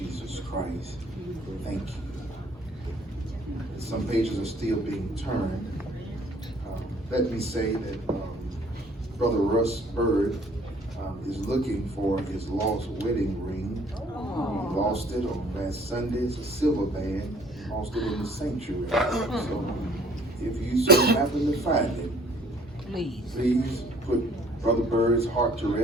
Christ. Thank you. Some pages are still being turned. Let me say that Brother Russ Bird is looking for his lost wedding ring. He lost it on last Sunday. It's a silver band. He lost it in the sanctuary. So if you so happen to find it, please put Brother Bird's heart to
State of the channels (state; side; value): normal; both; correlation 0.57